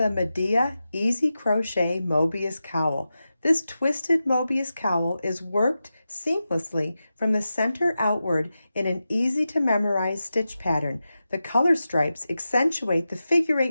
Madea Easy Crochet Mobius Cowl. This twisted Mobius cowl is worked seamlessly from the center outward in an easy to memorize stitch pattern. The color stripes accentuate the figure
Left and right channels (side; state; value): both; inverted; correlation -0.92